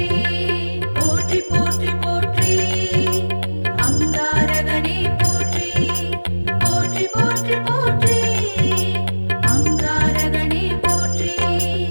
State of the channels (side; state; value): both; inverted; correlation -1.00